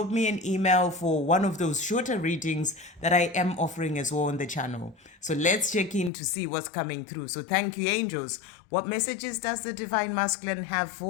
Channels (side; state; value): right; drops out; at 6.1 s